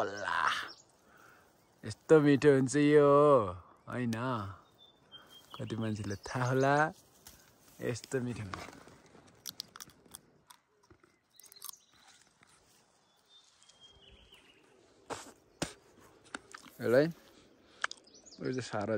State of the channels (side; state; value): both; identical; correlation 1.00